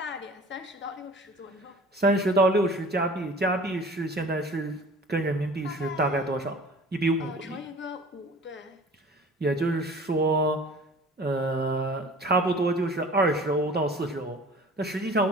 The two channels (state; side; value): normal; both; correlation 0.44